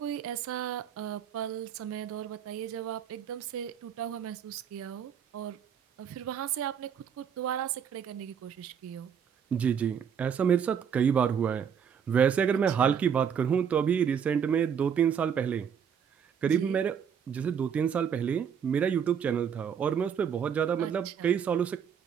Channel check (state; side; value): quieter; left; 7.7 dB